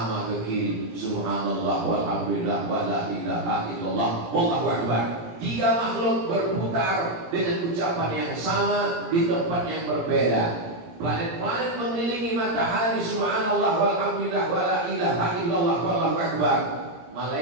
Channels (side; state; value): left; late; 17 ms